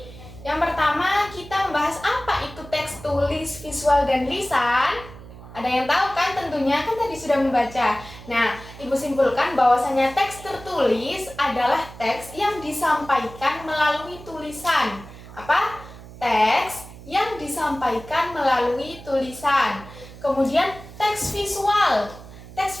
Yang pertama, kita membahas apa itu teks, tulis, visual, dan lisan. Ada yang tahu kan tentunya, kan tadi sudah membaca. Nah, Ibu simpulkan bahwasanya teks tertulis adalah teks yang disampaikan melalui tulisan. Apa? Teks yang disampaikan melalui tulisan. Kemudian teks visual. Teks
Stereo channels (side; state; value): right; noise; hum, 16 dB below the sound